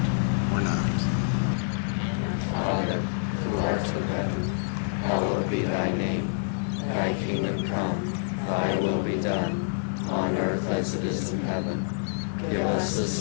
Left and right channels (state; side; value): silent; right; 57 dB below the other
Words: or not. Father, who art in heaven, hallowed be thy name. Thy kingdom come, thy will be done, on earth as it is in heaven. Give us